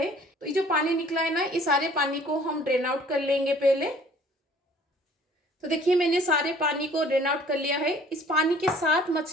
तो ये जो पानी निकला है ना, इस सारे पानी को हम ड्रेन आउट कर लेंगे पहले। तो देखिए मैंने सारे पानी को ड्रेन आउट कर लिया है। इस पानी के साथ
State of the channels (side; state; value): both; normal; correlation 0.54